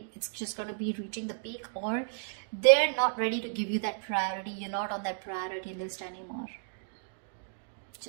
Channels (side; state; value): left; silent; digital silence